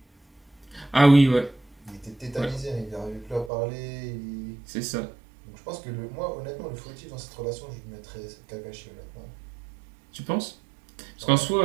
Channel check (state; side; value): drops out; left; at 3.5 s